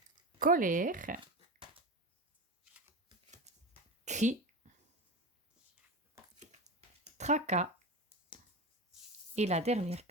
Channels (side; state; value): both; normal; correlation 0.24